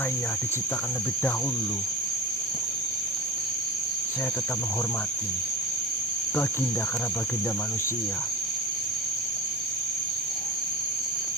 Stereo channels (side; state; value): both; normal; correlation 0.30